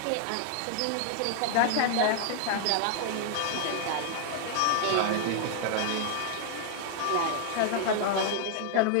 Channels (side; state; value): both; different; correlation 0.00